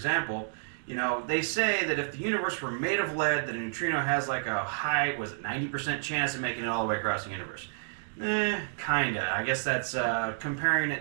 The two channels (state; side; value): silent; left; digital silence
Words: they say that if the universe were made of lead, that a neutrino has like a high, 90% chance of making it all the way across the universe. Kinda. I guess that's comparing